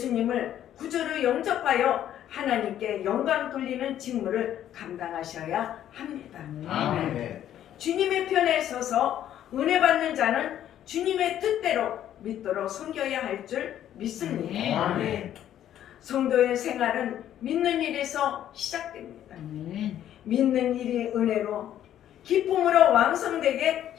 구주로 영접하여 하나님께 영광 돌리는 직무를 감당하셔야 합니다. 아멘. 주님의 편에 서서 은혜 받는 자는 주님의 뜻대로 믿도록 섬겨야 할 줄 믿습니다. 아멘. 성도의 생활은 믿는 일에서 시작됩니다. 믿는 일이 은혜로 기쁨으로 왕성되게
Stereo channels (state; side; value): quieter; right; 11.2 dB